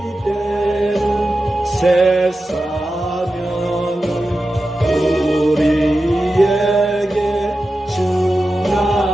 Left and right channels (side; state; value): both; normal; correlation 0.92